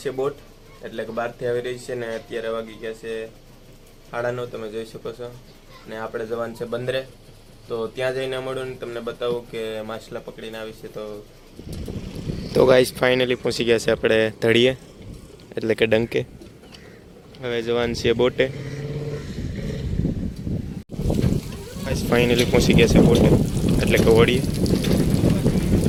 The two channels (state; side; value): identical; both; correlation 1.00